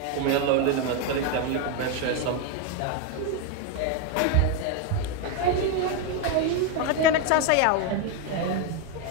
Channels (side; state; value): both; different; correlation 0.01